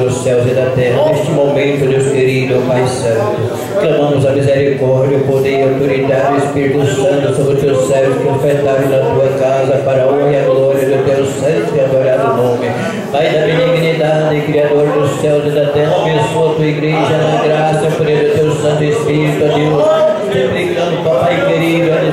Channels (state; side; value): identical; both; correlation 1.00